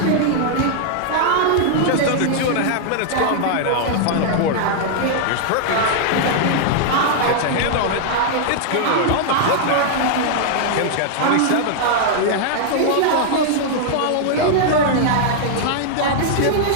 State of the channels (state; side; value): different; both; correlation -0.01